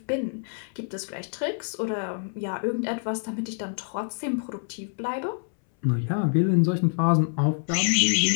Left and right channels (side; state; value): right; silent; 61 dB below the other